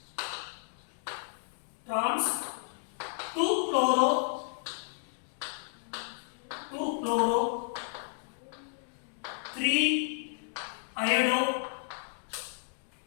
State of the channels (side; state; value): right; silent; digital silence